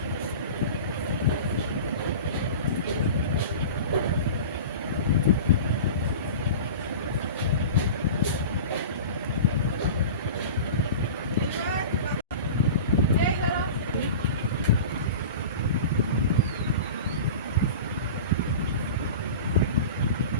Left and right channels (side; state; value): both; inverted; correlation -0.34